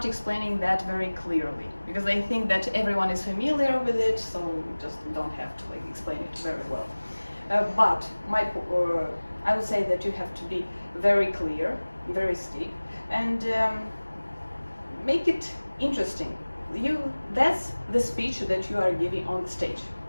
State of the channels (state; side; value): inverted; both; correlation -1.00